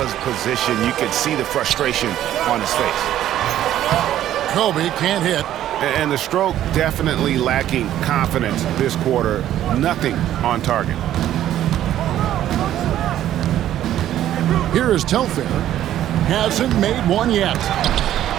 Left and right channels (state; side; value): quieter; left; 12.2 dB